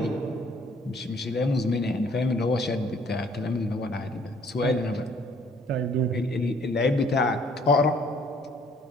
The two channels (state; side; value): normal; both; correlation 0.60